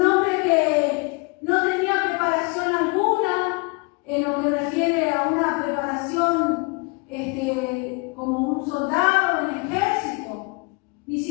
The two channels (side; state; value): right; quieter; 29.6 dB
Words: hombre que no tenía preparación alguna en lo que refiere a una preparación como un soldado en el ejército. Ni